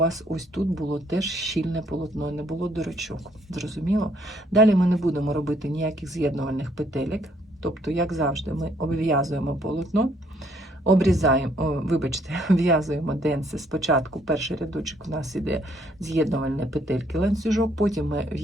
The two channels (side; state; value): both; normal; correlation 0.67